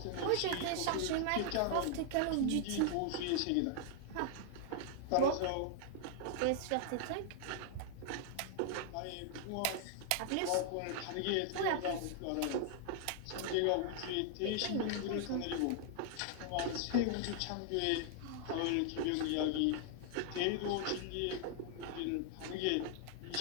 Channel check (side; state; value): both; different; correlation 0.00